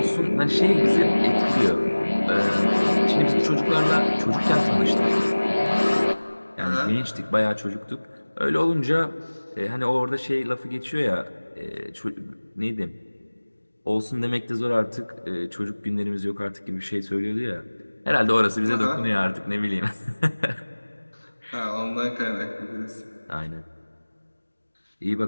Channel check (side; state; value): both; inverted; correlation -1.00